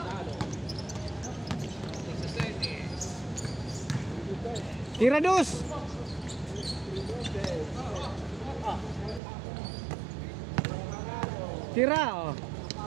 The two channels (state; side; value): drops out; left; at 9.2 s